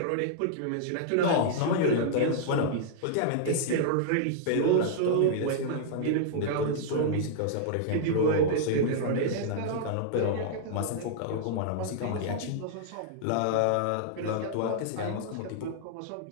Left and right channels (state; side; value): different; both; correlation -0.01